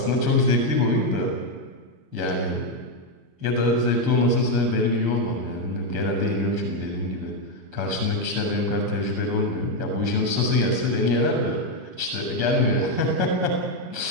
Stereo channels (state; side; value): late; left; 6.9 ms